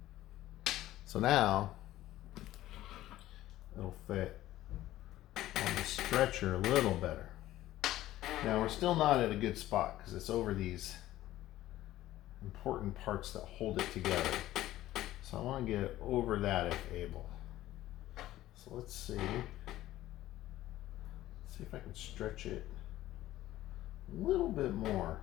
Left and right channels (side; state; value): right; quieter; 14.8 dB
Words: So now it'll fit on the stretcher a little better. Now we're still not at a good spot because it's over these important parts that hold it together. So I want to get it over that if able. So let's see. Let's see if I can stretch it a little bit more.